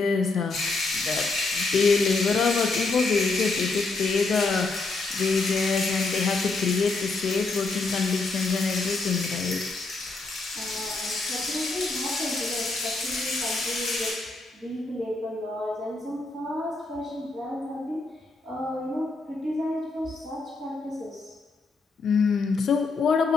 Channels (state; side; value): quieter; right; 3.6 dB